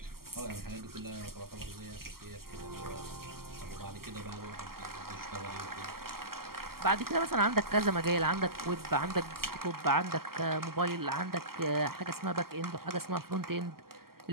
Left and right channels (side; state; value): left; late; 0.93 ms